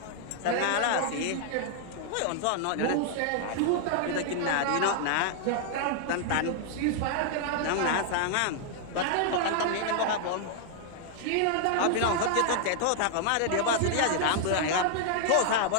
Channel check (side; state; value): both; different; correlation 0.00